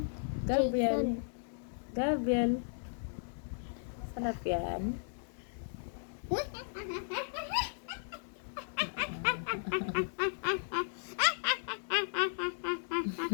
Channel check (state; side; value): silent; right; digital silence